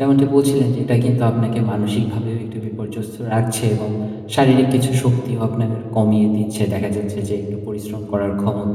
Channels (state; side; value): identical; both; correlation 1.00